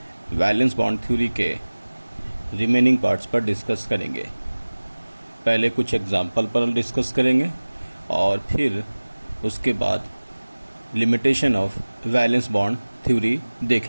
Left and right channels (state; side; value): inverted; both; correlation -1.00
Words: वैलेंस बॉन्ड थ्योरी के रिमेनिंग पार्ट्स पर डिस्कस करेंगे। पहले कुछ एग्जाम्पल पर डिस्कस करेंगे और फिर उसके बाद limitation of valence bond theory